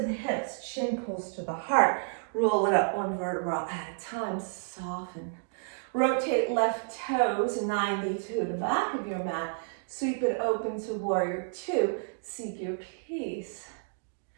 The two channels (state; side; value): silent; left; digital silence